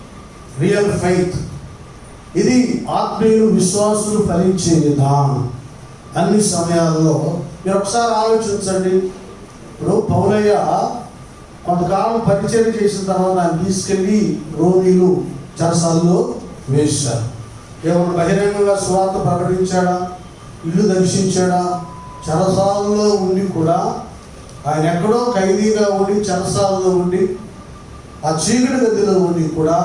రియల్ ఫెయిత్. ఇది ఆత్మీయులు విశ్వాసులు ఫలించే విధానం. అన్ని సమయాల్లో మీరు ఒకసారి ఆలోచించండి. ఇప్పుడు పౌలయ్య కొంతకాలం పరిచయం చేసిన తర్వాత ఆయన తీసుకెళ్ళి రోమిలు చెరసాల్లో వేశారు. ఏమన్నా బహిరంగంగా సువార్త ప్రకటించాడా? ఇల్లు దర్శించాడా? చెరసాలలో ఉండి కూడా ఆయన ఎక్కడో ఖైదీగా ఉండి చెరసాలలో ఉండి ఆ చీకటి గదిలో ఉండి కూడా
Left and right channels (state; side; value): identical; both; correlation 1.00